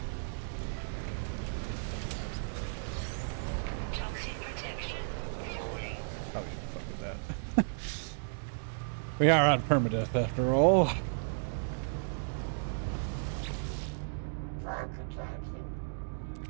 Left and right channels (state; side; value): silent; left; digital silence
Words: Toxic protection falling. Probably shouldn't fuck with that. We are on permadeath after all.